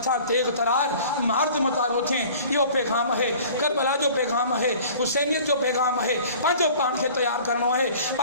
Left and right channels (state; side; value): inverted; both; correlation -0.46